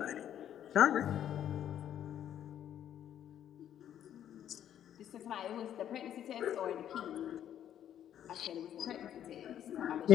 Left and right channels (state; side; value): quieter; right; 10.4 dB